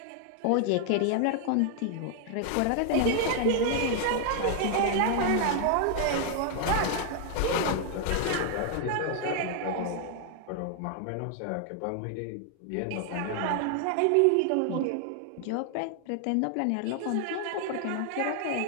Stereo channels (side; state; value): both; different; correlation 0.00